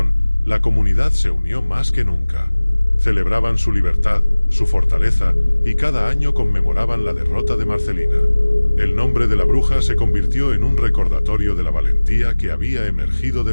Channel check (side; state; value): both; inverted; correlation -1.00